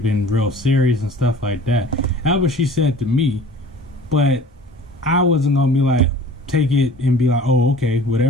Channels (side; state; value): both; normal; correlation 0.46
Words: been real serious and stuff like that." That's what she said to me, but I wasn't gonna be like take it and be like, "Oh, okay,